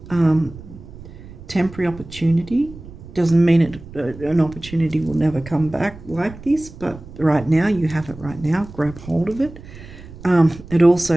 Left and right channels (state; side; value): noise; right; rumble, 16 dB below the sound